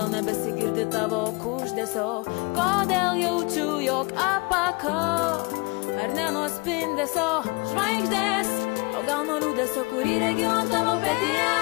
nebesigirdi tavo kuždesio, kodėl jaučiu, jog apakau, ar ne nuo spindesio žvaigždės, o gal nuo liūdesio, kurį regiu ant tavo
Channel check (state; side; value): quieter; right; 27.9 dB